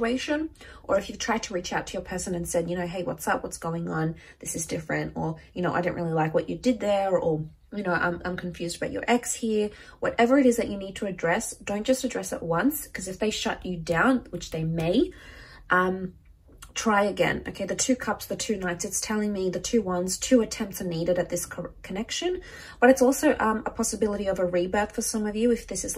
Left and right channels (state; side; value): identical; both; correlation 1.00